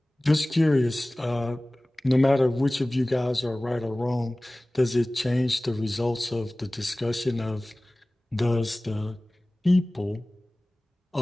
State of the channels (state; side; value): normal; both; correlation 0.98